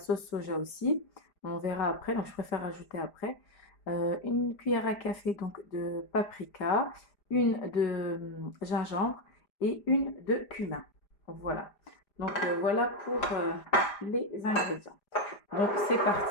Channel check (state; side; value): late; right; 5.0 ms